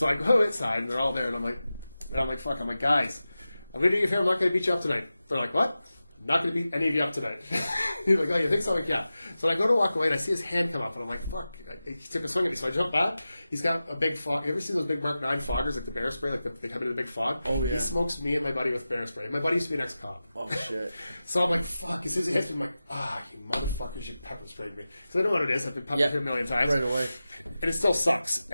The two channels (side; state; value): both; inverted; correlation -0.94